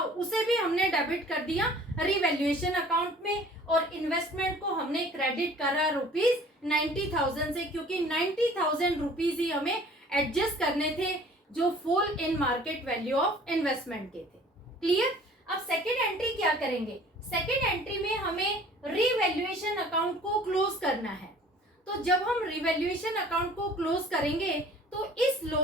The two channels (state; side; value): normal; both; correlation 0.50